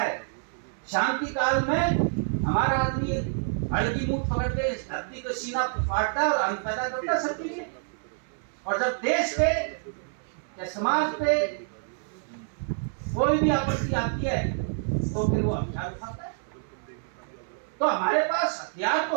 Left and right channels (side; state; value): left; silent; 60 dB below the other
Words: शांति काल में हमारा आदमी हड़ की मुठ पकड़ के इस धरती को सीना फाड़ता है और अन्न पैदा करता है सबके लिए। और जब देश पे या समाज पे कोई भी आपत्ति आती है तो फिर वो हथियार उठाता है। तो हमारे पास हथियार